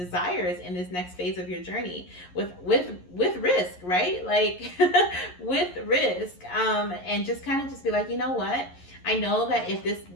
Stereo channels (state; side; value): late; right; 11 ms